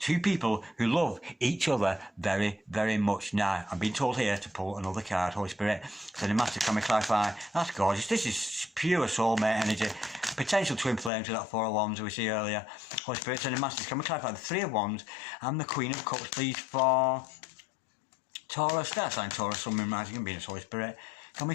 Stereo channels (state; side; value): drops out; right; at 11.1 s